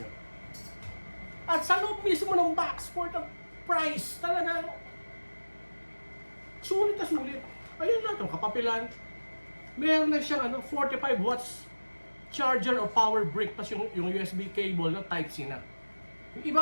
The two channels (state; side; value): inverted; both; correlation -1.00